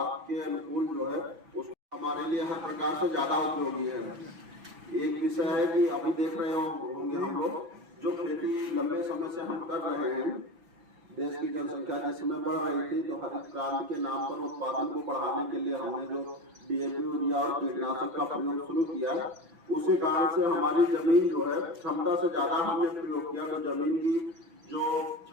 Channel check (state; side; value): late; left; 5.9 ms